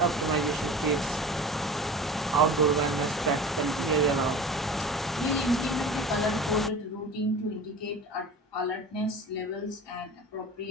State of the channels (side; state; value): both; normal; correlation 0.37